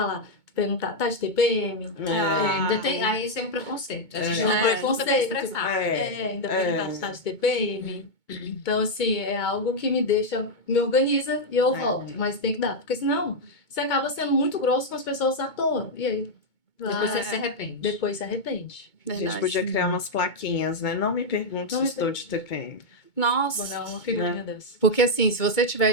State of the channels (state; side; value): late; right; 2.2 ms